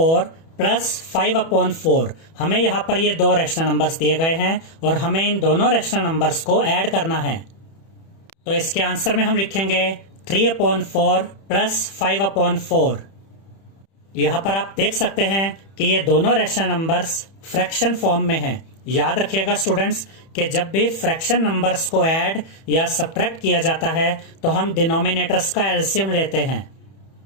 प्लस 5/4। हमें यहाँ पर ये दो रैशनल नंबर्स दिए गए हैं और हमें इन दोनों रैशनल नंबर्स को ऐड करना है। तो इसके आंसर में हम लिखेंगे 3/4 प्लस 5/4। यहां पर आप देख सकते हैं कि ये दोनों रैशनल नंबर्स फ्रैक्शन फॉर्म में हैं। याद रखिएगा स्टूडेंट्स कि जब भी फ्रैक्शन नंबर्स को ऐड या सब्ट्रैक्ट किया जाता है तो हम डिनोमिनेटर्स का एलसीएम लेते हैं।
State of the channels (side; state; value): right; late; 31 ms